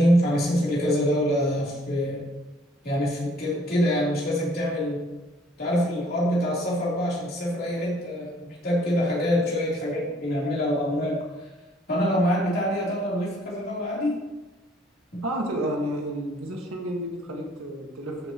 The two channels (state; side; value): normal; both; correlation 0.62